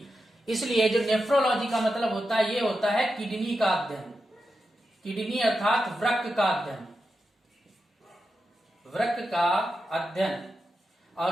इसलिए जो नेफ्रोलॉजी का मतलब होता है, ये होता है किडनी का अध्ययन, किडनी अर्थात वृक्क का अध्ययन, वृक्क का अध्ययन।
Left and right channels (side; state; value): both; normal; correlation 0.89